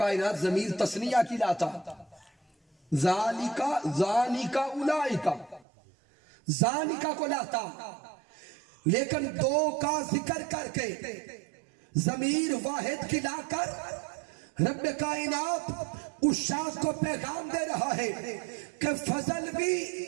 ضمیر تثنیہ کی لاتا، ذالکا ذانکا اولائکا، ذانکا کو لاتا، لیکن دو کا ذکر کر کے ضمیر واحد کی لا کر رب کائنات اس شخص کو پیغام دے رہا ہے کہ فضل بھی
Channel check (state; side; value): drops out; left; at 5.7 s